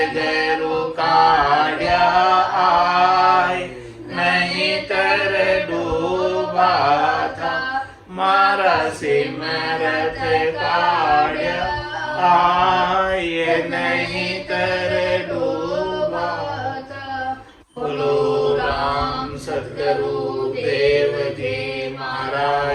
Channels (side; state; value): both; identical; correlation 1.00